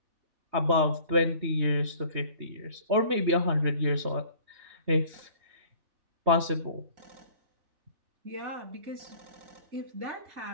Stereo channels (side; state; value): left; late; 3.2 ms